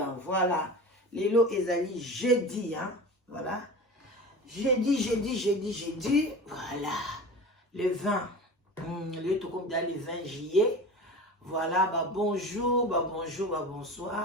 Voilà. Lelo ezali jeudi, hein. Voilà. Jeudi. Voilà. Le 20. Le tout comme dans le 20 juillet. Voilà. Bah bonjour,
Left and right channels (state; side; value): normal; both; correlation 0.33